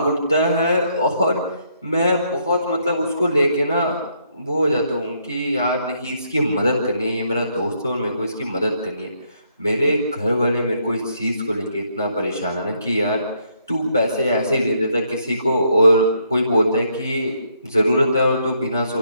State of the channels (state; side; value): inverted; both; correlation -0.73